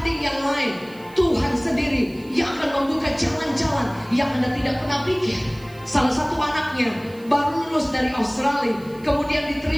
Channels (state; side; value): noise; right; hiss, 26 dB below the sound